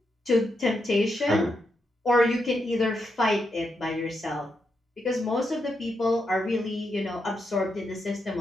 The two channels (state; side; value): normal; both; correlation 0.83